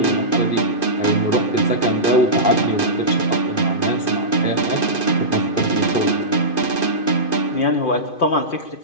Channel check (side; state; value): right; late; 2.5 ms